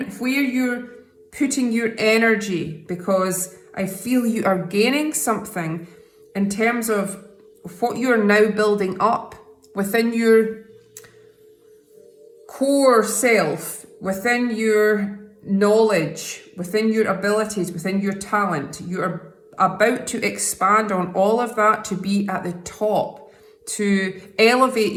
where you're putting your energy, because I feel you are gaining something in terms of what you are now building up within your core self, within your knowledge, within your abilities, within your talent. You are about to expand on all of that to be at the top, to elevate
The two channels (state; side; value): identical; both; correlation 1.00